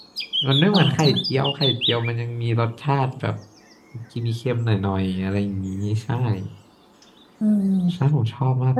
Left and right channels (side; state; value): both; identical; correlation 1.00